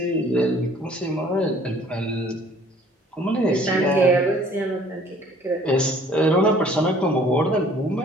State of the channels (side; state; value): both; normal; correlation 0.55